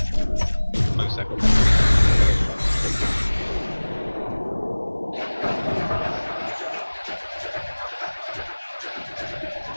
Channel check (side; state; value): both; inverted; correlation -1.00